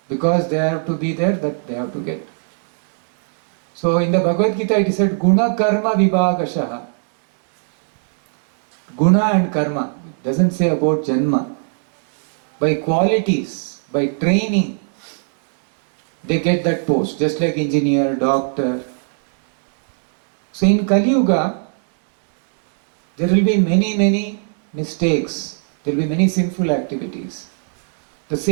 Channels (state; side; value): silent; left; digital silence